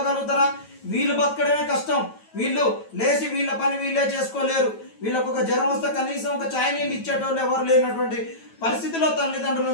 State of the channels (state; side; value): late; right; 9.1 ms